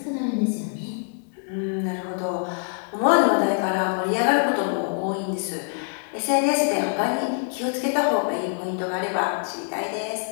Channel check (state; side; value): silent; right; 55 dB below the other